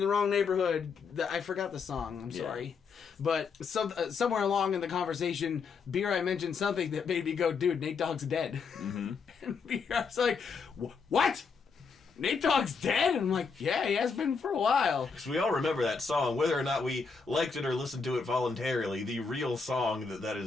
wrong neighborhood. I forgot the song. I'm sorry. But somewhere along in the conversation, B-Rye mentioned something that made me go, dude, Nate Dogg's dead. Mm-hmm. And B-Rye's like, what? Nate Dogg's dead? And I'm like, yeah, he has been for a while. Because we all remember that song, whether or not we liked it or listened to it voluntarily. The real song that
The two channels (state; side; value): quieter; right; 5.3 dB